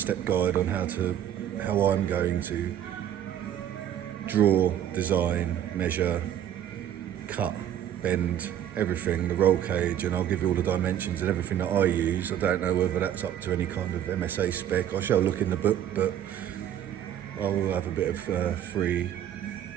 guide on how I'm going to draw, design, measure, cut, bend, everything, the roll cage, and I'll give you all the dimensions and everything that I use. I don't know whether that's up to any kind of MSA spec. I shall look in the book, but I will have a bit of free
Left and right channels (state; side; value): quieter; left; 10.5 dB